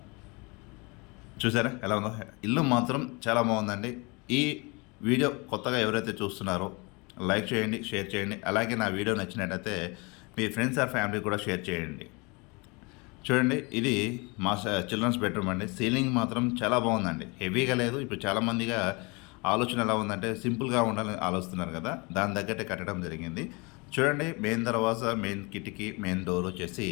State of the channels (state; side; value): quieter; right; 28.3 dB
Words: చూసారా ఎలా ఉందో. ఇల్లు మాత్రం చాలా బాగుందండి. ఈ వీడియో కొత్తగా ఎవరైతే చూస్తున్నారో లైక్ చేయండి, షేర్ చేయండి. అలాగే నా వీడియో నచ్చినట్టయితే మీ ఫ్రెండ్స్ ఆర్ ఫ్యామిలీ కూడా షేర్ చేయండి. చూడండి, ఇది మా చిల్డ్రన్స్ బెడ్రూమ్ అండి. సీలింగ్ మాత్రం చాలా బాగుందండి. హెవీగా లేదు. ఇప్పుడు చాలామందిగా ఆలోచన ఎలా ఉందంటే సింపుల్గా ఉండాలని ఆలోచిస్తున్నారు కదా, దాని తగ్గట్టే కట్టడం జరిగింది. చూడండి, మెయిన్ దర్వాజా, మెయిన్ కిటికీ, మెయిన్ డోర్ వచ్చేసి